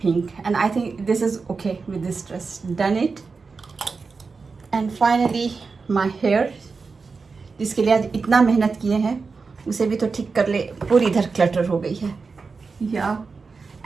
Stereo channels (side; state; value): left; quieter; 4.6 dB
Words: and I think this is okay with this dress. Done it. And finally my hair, जिसके लिए आज इतना मेहनत किए हैं उसे भी तो ठीक कर ले. पूरी इधर क्लटर हो गई है. या